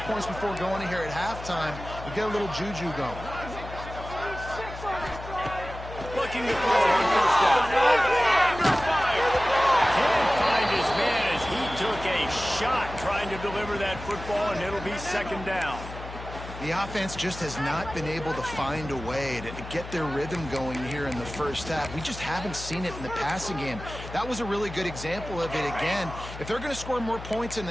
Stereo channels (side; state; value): left; noise; hum, 12 dB below the sound